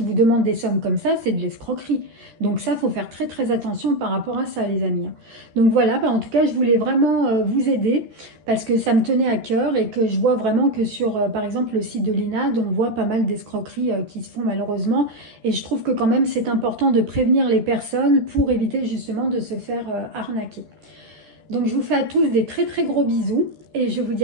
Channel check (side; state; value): left; late; 13 ms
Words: vous demande des sommes comme ça, c'est de l'escroquerie. Donc ça, il faut faire très très attention par rapport à ça, les amis. Donc voilà, en tout cas, je voulais vraiment vous aider parce que ça me tenait à cœur et que je vois vraiment que sur, par exemple, le site de l'INAD, on voit pas mal d'escroqueries qui se font malheureusement. Et je trouve que quand même, c'est important de prévenir les personnes pour éviter justement de se faire arnaquer. Donc je vous fais à tous des très très gros bisous et je vous dis